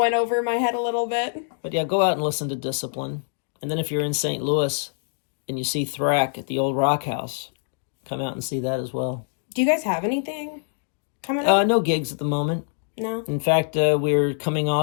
over my head a little bit. But yeah, go out and listen to Discipline. And then if you're in St. Louis and you see Thrak at the old Rock House, come out and see that as well. Do you guys have anything coming up? No gigs at the moment. No. In fact, we're coming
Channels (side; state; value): right; silent; digital silence